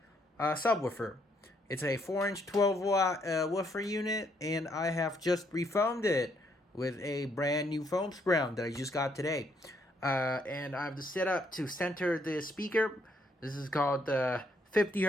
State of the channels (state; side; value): normal; both; correlation 0.72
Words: subwoofer. It's a 4-inch 12-watt woofer unit, and I have just refoamed it with a brand new foam sprout that I just got today. And I have the setup to center the speaker. This is called the 50